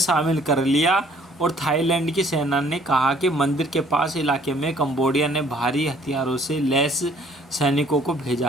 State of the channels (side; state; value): both; normal; correlation 0.59